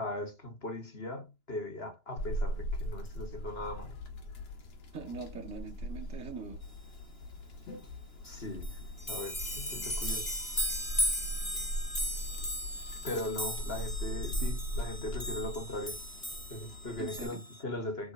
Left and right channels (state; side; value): late; right; 2.9 ms